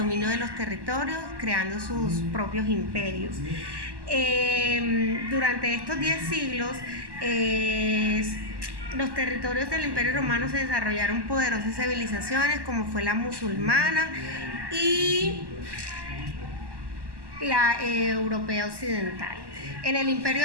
de los territorios, creando sus propios imperios. Durante estos 10 siglos, los territorios del Imperio Romano se desarrollaron poderosas civilizaciones como fue la musulmana y la europea occidental. En el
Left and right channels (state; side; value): late; left; 1.1 ms